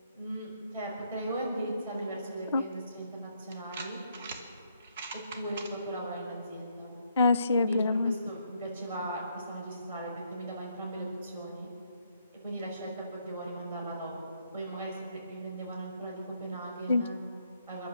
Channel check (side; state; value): both; inverted; correlation -0.72